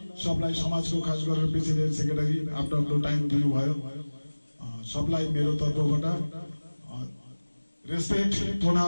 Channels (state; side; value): inverted; both; correlation -1.00